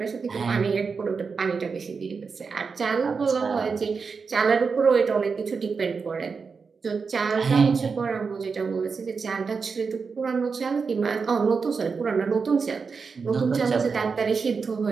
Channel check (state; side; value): quieter; left; 5.2 dB